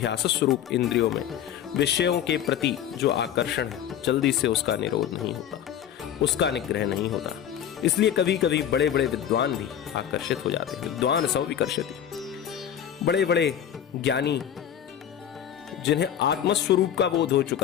स्वरूप इंद्रियों में विषयों के प्रति जो आकर्षण है, जल्दी से उसका निरोध नहीं होता, उसका निग्रह नहीं होता। इसलिए कभी कभी बड़े बड़े विद्वान भी आकर्षित हो जाते हैं। विद्वान सब विकर्षति, बड़े बड़े ज्ञानी जिन्हें आत्मस्वरूप का बोध हो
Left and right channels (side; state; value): right; quieter; 9.8 dB